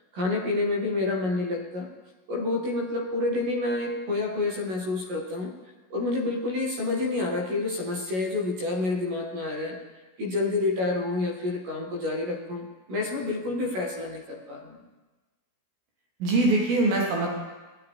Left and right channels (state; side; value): late; left; 16 ms